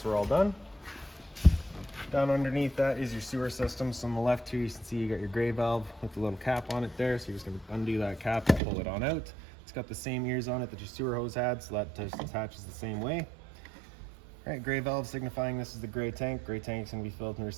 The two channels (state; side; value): drops out; left; at 8.6 s